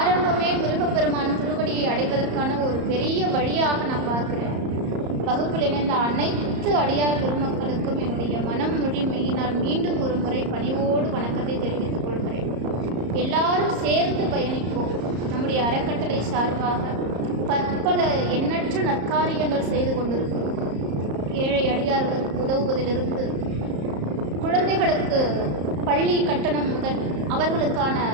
முருகப்பெருமான் திருவடியை அடைவதற்கான ஒரு பெரிய வழியாக நான் பார்க்கிறேன். வகுப்பில் இணைந்த அனைத்து அடியார் பெருமக்களுக்கும் என்னுடைய மனம் மொழி மெய்யினால் மீண்டும் ஒரு முறை பணிவோடு வணக்கத்தை தெரிவித்துக் கொள்கிறேன். எல்லாரும் சேர்ந்து பயணிப்போம். நம்முடைய அறக்கட்டளை சார்பாக பற்பல எண்ணற்ற நற்காரியங்கள் செய்து கொண்டிருக்கிறோம். ஏழை அடியார்களுக்கு உதவுவதிலிருந்து, குழந்தைகளுக்கு பள்ளி கட்டணம் முதல் அவர்களுக்கான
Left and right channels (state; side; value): late; left; 34 ms